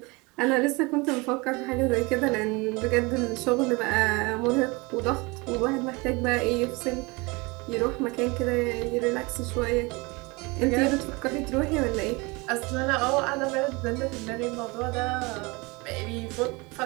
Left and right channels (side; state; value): left; quieter; 26.0 dB